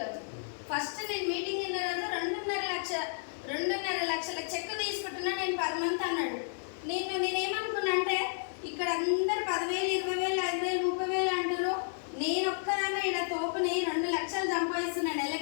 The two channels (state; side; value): silent; right; 56 dB below the other